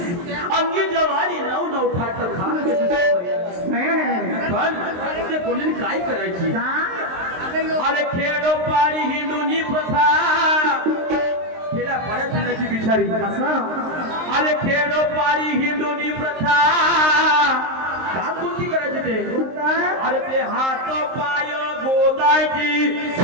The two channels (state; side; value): late; left; 23 ms